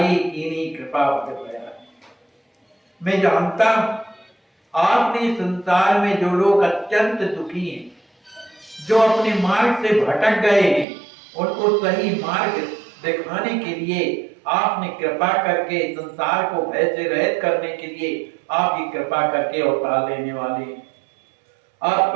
कीनी कृपा भया। मैं जानता आपने संसार में जो लोग अत्यंत दुखी हैं, जो अपने मार्ग से भटक गए हैं, उनको सही मार्ग दिखाने के लिए आपने कृपा करके संसार को भय से रहित करने के लिए आपकी कृपा करके अवतार लेने वाले।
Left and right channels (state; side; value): drops out; left; at 10.9 s